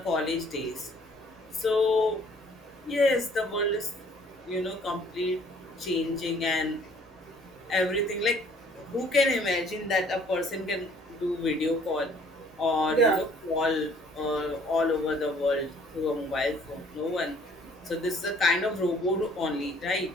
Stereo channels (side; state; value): both; normal; correlation 0.58